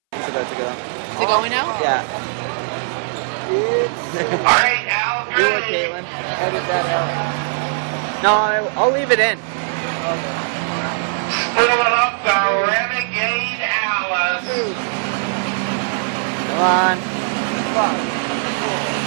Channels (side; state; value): left; silent; 63 dB below the other